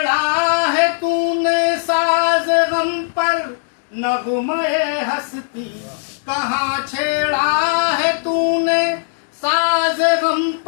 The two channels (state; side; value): silent; right; digital silence